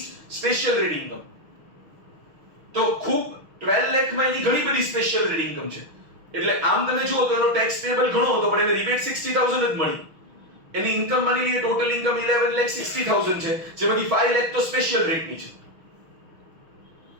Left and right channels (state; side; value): late; left; 6.3 ms